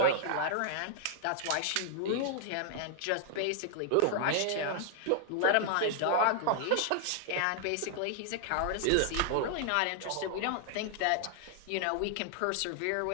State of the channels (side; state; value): both; different; correlation 0.00